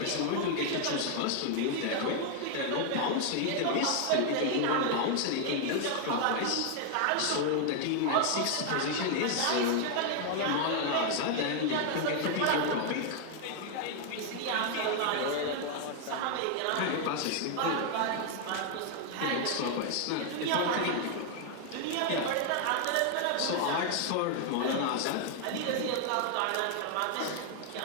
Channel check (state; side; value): different; both; correlation 0.00